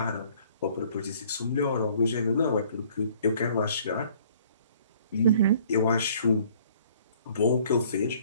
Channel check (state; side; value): inverted; both; correlation -0.57